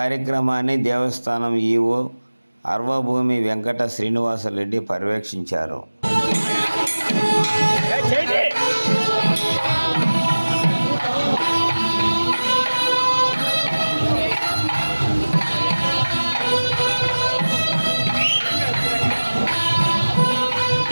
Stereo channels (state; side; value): inverted; both; correlation -1.00